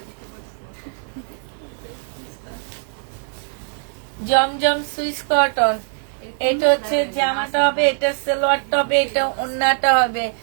জমজম সুইস কটন। এটা হচ্ছে জামাটা হবে, এটা সালোয়ারটা হবে, এটা ওন্নাটা হবে।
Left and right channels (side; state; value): left; silent; digital silence